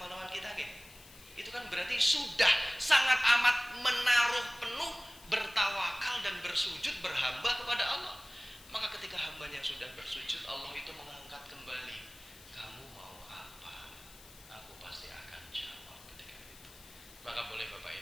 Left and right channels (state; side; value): noise; left; hiss, 20 dB below the sound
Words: kita, gitu. Itu kan berarti sudah sangat amat menaruh penuh, bertawakal dan bersujud berhamba kepada Allah. Maka ketika hambanya sudah bersujud, Allah itu mengangkat kembali. Kamu mau apa? Aku pasti akan jawab ketika itu. Maka boleh Bapak